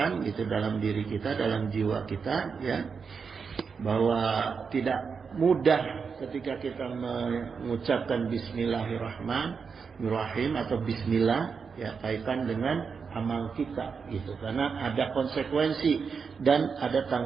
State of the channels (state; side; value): quieter; left; 5.6 dB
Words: itu dalam diri kita, dalam jiwa kita, ya, bahwa tidak mudah ketika kita mengucapkan Bismillahirrahmanirrahim atau Bismillah, ya, kaitan dengan amal kita, gitu, karena ada konsekuensi dan ada